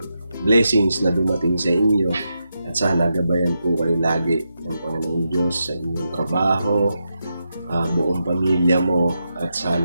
blessings na dumating sa inyo at sana gabayan po kayo lagi ng Panginoon Diyos sa inyong trabaho, buong pamilya mo at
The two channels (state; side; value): inverted; both; correlation -0.86